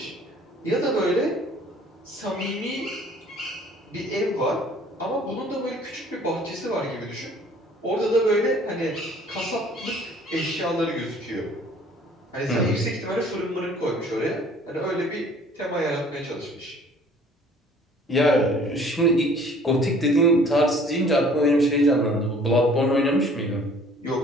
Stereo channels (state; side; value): normal; both; correlation 0.53